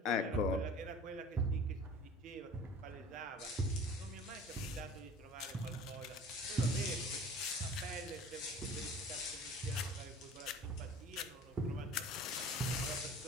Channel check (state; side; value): normal; both; correlation 0.44